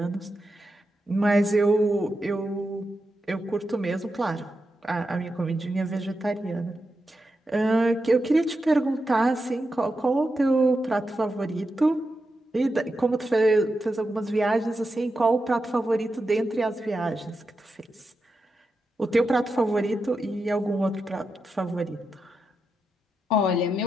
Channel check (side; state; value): both; normal; correlation 0.88